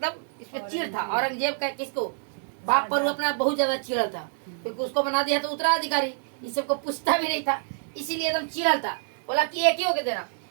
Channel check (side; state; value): left; silent; digital silence